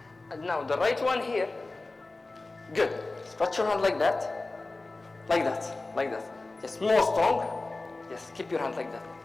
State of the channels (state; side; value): quieter; right; 3.3 dB